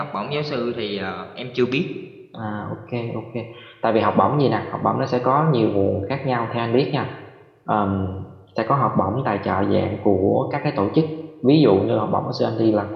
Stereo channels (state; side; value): identical; both; correlation 1.00